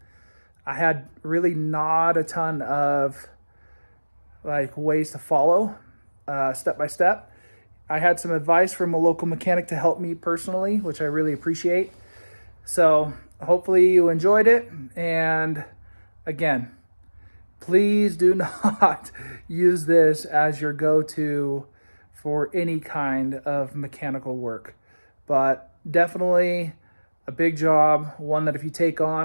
I had really not a ton of like ways to follow step by step. I had some advice from a local mechanic to help me personally, which I really appreciate. So hopefully you enjoyed it. And again, please do not use this as your go-to for any kind of mechanical work. But definitely a big job, one that if you take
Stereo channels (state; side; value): inverted; both; correlation -1.00